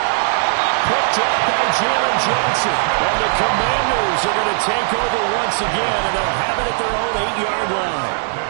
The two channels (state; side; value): silent; left; 61 dB below the other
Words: Quick drop by Jalen Johnson. And the Commanders are going to take over once again, and they'll have it at their own 8-yard line.